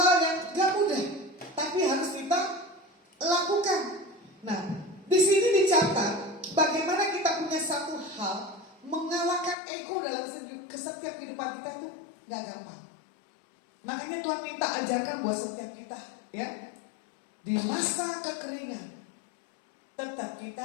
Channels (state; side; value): drops out; right; at 9.6 s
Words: yang gak mudah, tapi harus kita lakukan. Nah, di sini dicatat bagaimana kita punya satu hal mengalahkan ego dalam setiap kehidupan kita itu gak gampang. Makanya Tuhan minta ajarkan buat setiap kita, ya. Di masa kekeringan tetap